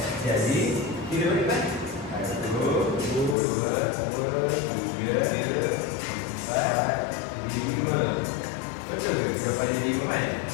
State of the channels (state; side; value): drops out; right; at 3.4 s